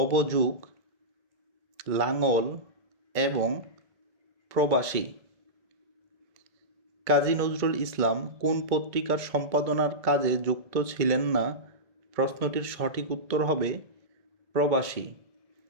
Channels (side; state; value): left; late; 2.2 ms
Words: লাঙল এবং প্রবাসী। কাজী নজরুল ইসলাম কোন পত্রিকার সম্পাদনার কাজে যুক্ত ছিলেন না? প্রশ্নটির সঠিক উত্তর হবে প্রবাসী।